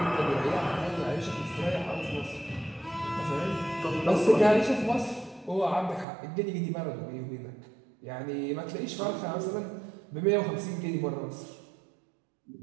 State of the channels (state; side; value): drops out; left; at 6.1 s